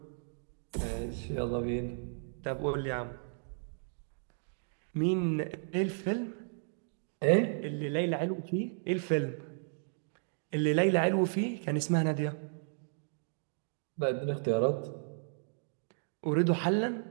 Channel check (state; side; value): silent; left; digital silence